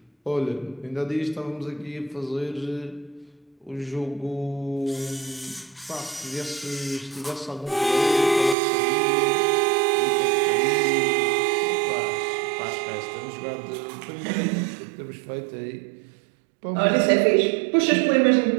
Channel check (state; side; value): drops out; left; at 8.6 s